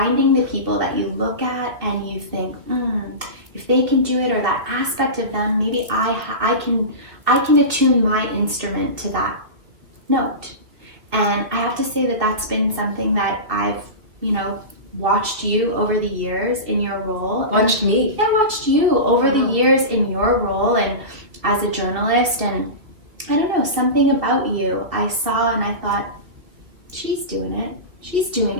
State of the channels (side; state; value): left; late; 2.4 ms